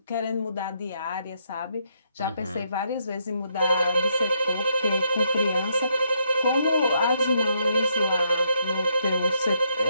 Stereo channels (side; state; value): both; inverted; correlation -0.74